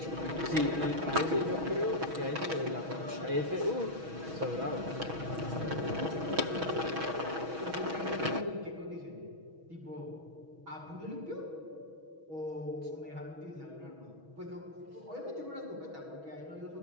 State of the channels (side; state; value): left; late; 6.2 ms